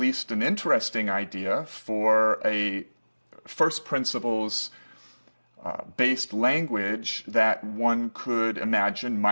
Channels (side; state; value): both; inverted; correlation -1.00